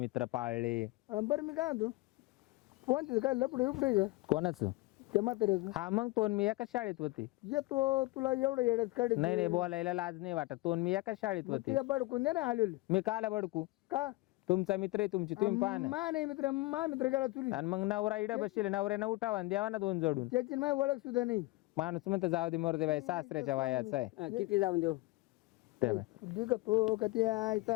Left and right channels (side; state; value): right; quieter; 21.0 dB